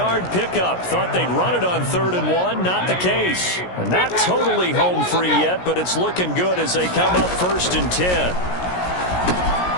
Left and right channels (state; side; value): late; right; 17 ms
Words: pickup. Thought they'd run it on 3rd and 1. Not the case. Not totally home free yet, but it's looking good as they come up 1st and 10.